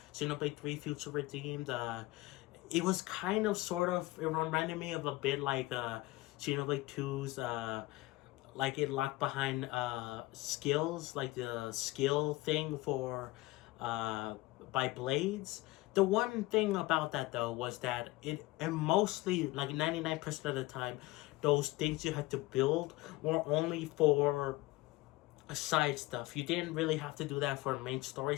Xenoblade 3 Future Redeemed. It was kind of sort of, it reminded me of a bit like Xenoblade 2's, like it locked behind skills, like the skill thing for by blades. The one thing about that though was that and mostly like 99% of the time, those things you had to build were only for side stuff. You didn't really have to do that for main story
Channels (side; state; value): right; quieter; 19.4 dB